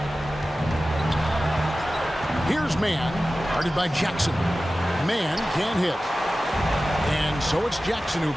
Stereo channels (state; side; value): normal; both; correlation 0.95